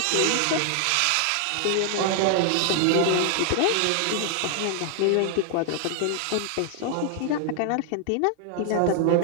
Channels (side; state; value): both; different; correlation 0.00